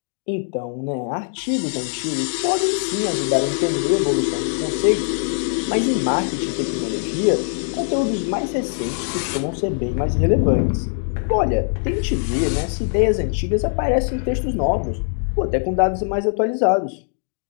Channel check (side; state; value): right; silent; 65 dB below the other